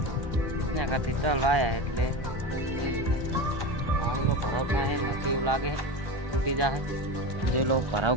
એના કરતી તલ વાયા એટલે પાણીનો ભરાવ થાય નથી એવું લાગે, તૂટી જાય। જે લોકો ભરાવ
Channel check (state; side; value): late; left; 1.1 ms